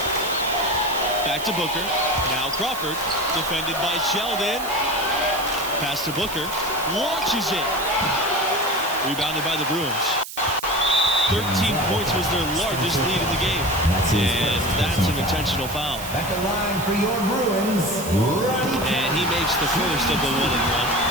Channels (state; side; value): noise; right; hiss, 11 dB below the sound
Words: Back to Booker. Now Crawford. Defended by Sheldon. Pass to Booker. Launches it. Rebounded by the Bruins. 13 points was their largest lead in the game. And that's an intentional foul. At the line for your Bruins, Ronnie. And he makes the first of the 1-and-1.